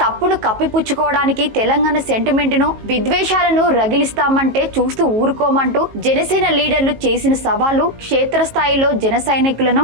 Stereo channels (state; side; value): late; left; 18 ms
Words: కప్పిపుచ్చుకోవడానికి తెలంగాణ సెంటిమెంట్ ను, విద్వేషాలను రగిలిస్తామంటే చూస్తూ ఊరుకోమంటూ జనసేన లీడర్లు చేసిన సవాలు క్షేత్రస్థాయిలో జన సైనికులను